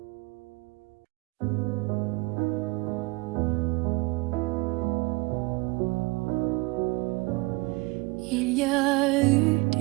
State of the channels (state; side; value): quieter; left; 24.3 dB